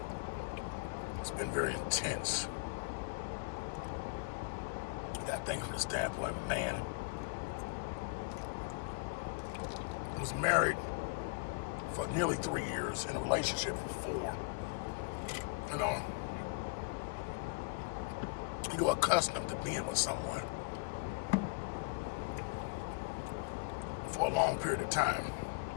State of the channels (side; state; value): right; quieter; 29.8 dB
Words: It's been very intense. I think from the standpoint of a man who was married for nearly 3 years, in a relationship for 4. You're accustomed to being with someone for a long period of time.